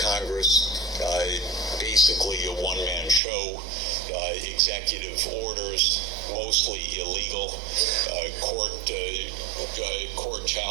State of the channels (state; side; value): drops out; left; at 3.2 s